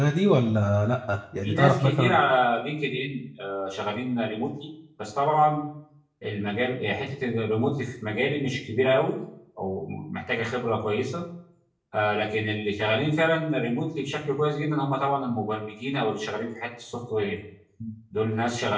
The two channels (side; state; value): both; identical; correlation 1.00